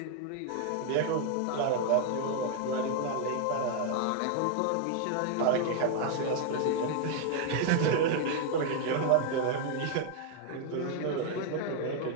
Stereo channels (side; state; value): both; different; correlation 0.00